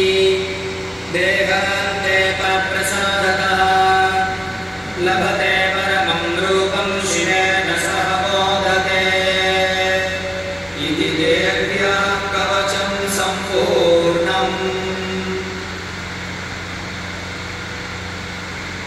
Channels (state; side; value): identical; both; correlation 1.00